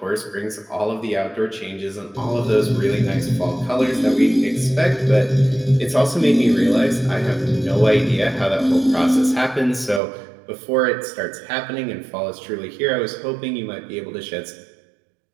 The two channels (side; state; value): left; drops out; at 10.0 s